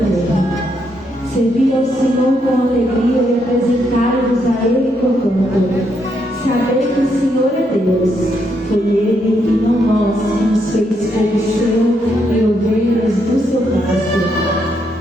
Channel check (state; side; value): normal; both; correlation 0.77